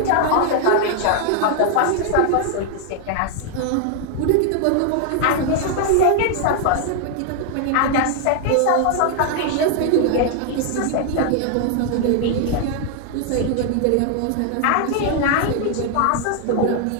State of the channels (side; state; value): both; different; correlation 0.00